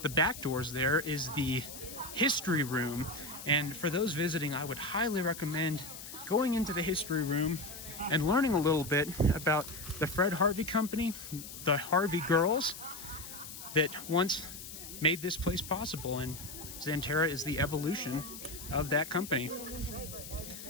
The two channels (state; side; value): noise; left; hiss, 12 dB below the sound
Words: the back doors there is the history room. And for those visiting, I would highly recommend going into the history room and learning a little bit about the Fred Harvey Company, the Harvey girls that once made this place possible. And Xanterra is the evolution of that company.